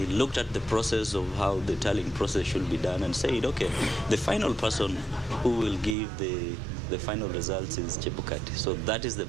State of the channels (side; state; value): left; drops out; at 6.0 s